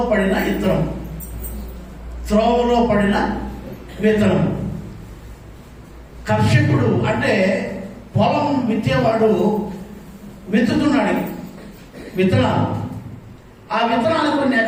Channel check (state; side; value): identical; both; correlation 1.00